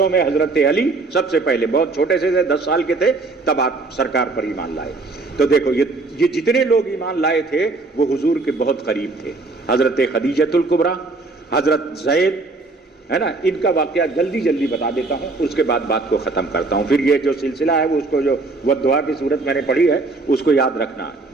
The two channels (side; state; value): left; quieter; 3.5 dB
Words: میں حضرت علی سب سے پہلے، بہت چھوٹے سے 10 سال کے تھے تب آپ سرکار پر ایمان لائے. تو دیکھو یہ جتنے لوگ ایمان لائے تھے وہ حضور کے بہت قریب تھے. حضرت خدیجۃ الکبریٰ، حضرت زید، ہے نا. ان کا واقعہ جلدی بتا دیتا ہوں، اس کے بعد بات کو ختم کرتا ہوں. پھر یہ جو سلسلہ ہے وہ اس کو جو وہ دعا کی صورت میں نے پڑھی ہے اس کو یاد رکھنا،